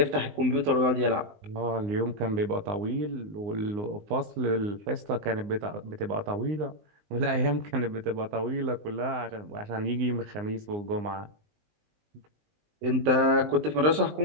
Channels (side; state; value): left; late; 19 ms